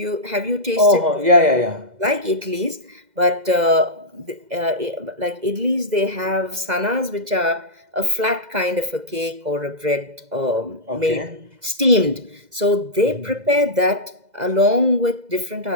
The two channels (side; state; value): left; late; 2.0 ms